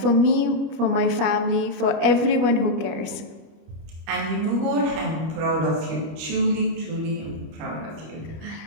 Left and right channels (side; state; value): left; late; 25 ms